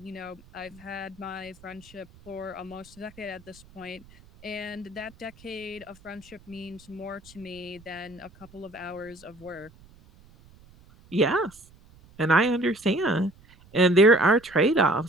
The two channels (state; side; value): noise; right; rumble, 25 dB below the sound